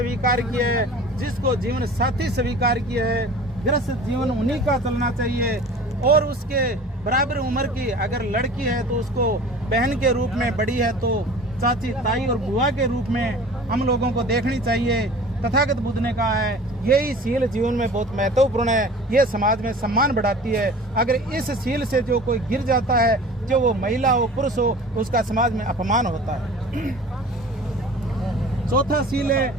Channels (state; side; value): normal; both; correlation 0.42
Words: किया है, जिसको जीवन साथी स्वीकार किया है, गृहस्थ जीवन उन्हीं का चलना चाहिए। और उसके बराबर उम्र की अगर लड़की है तो उसको बहन के रूप में, बड़ी है तो चाची, ताई और बुआ के रूप में हम लोगों को देखनी चाहिए। तथागत बुद्ध ने कहा है, यही सील जीवन में बहुत महत्वपूर्ण है, ये समाज में सम्मान बढ़ाती है। अगर इस सील से जो कोई गिर जाता है, जो वो महिला हो पुरुष हो, उसका समाज में अपमान होता है। चौथा सील है